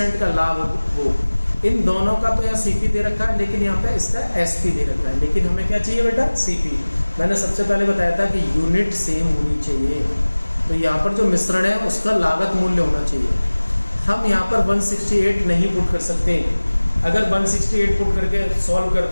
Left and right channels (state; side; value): inverted; both; correlation -1.00